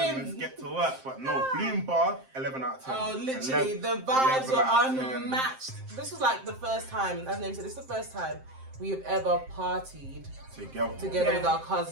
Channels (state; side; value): late; left; 7.6 ms